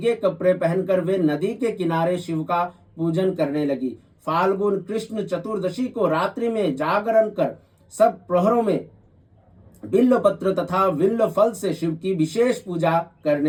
कपड़े पहनकर वे नदी के किनारे शिव का पूजन करने लगी। फाल्गुन कृष्ण चतुर्दशी को रात्रि में जागरण कर सब प्रहरों में बिल्व पत्र तथा बिल्व फल से शिव की विशेष पूजा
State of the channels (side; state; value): both; identical; correlation 1.00